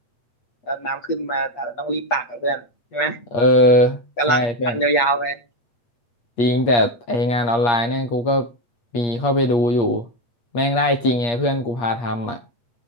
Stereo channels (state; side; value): late; right; 8.5 ms